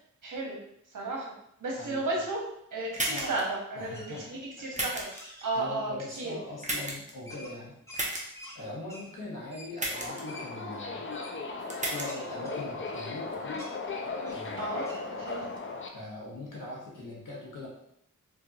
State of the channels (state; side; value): normal; both; correlation 0.00